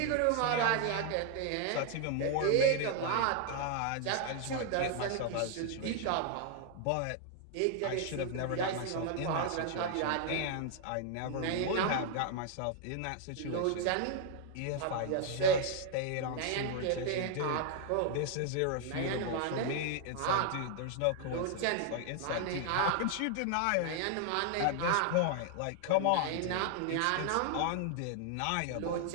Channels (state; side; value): different; both; correlation 0.00